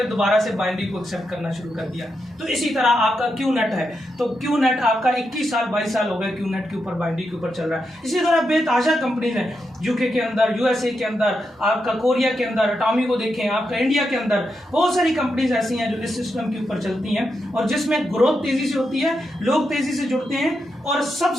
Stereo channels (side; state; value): both; normal; correlation 0.85